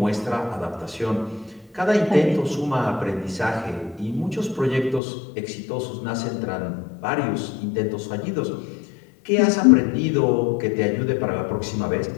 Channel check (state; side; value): drops out; right; at 5.0 s